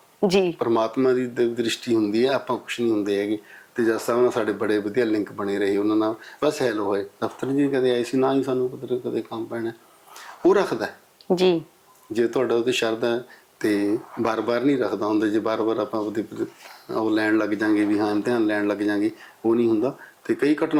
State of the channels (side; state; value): both; identical; correlation 1.00